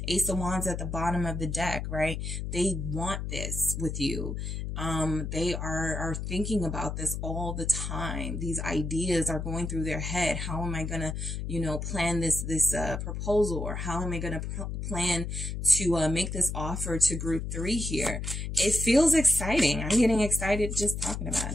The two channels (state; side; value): noise; left; hum, 4 dB below the sound